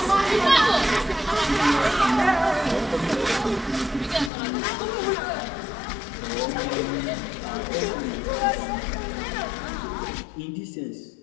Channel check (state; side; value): drops out; right; at 4.3 s